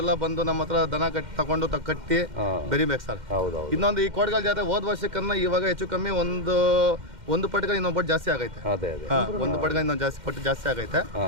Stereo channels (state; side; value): late; left; 2.1 ms